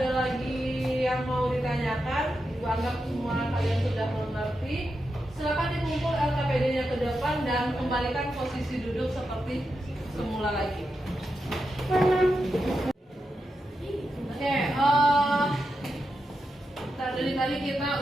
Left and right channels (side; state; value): both; normal; correlation 0.87